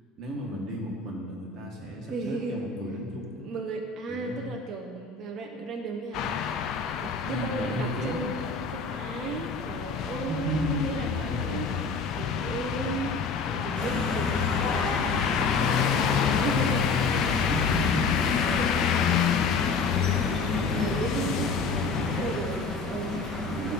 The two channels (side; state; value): right; quieter; 4.2 dB